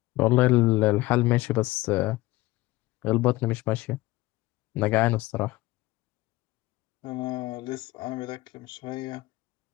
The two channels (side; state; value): right; quieter; 19.1 dB